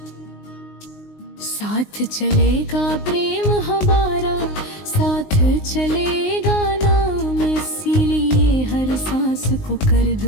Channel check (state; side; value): late; right; 19 ms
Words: साथ चलेगा प्रेम हमारा साथ चलेगा नाम। इसीलिए हर सांस को कर